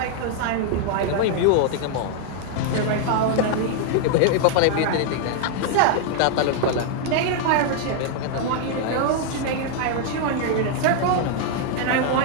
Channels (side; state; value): both; different; correlation 0.00